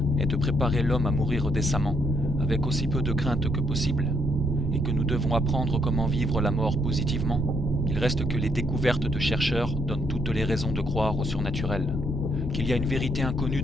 est de préparer l'homme à mourir décemment, avec aussi peu de crainte que possible, et que nous devons apprendre comment vivre la mort positivement, il reste que les découvertes de chercheurs donnent toutes les raisons de croire au surnaturel, qu'il y a une vérité inconnue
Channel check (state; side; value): normal; both; correlation 0.73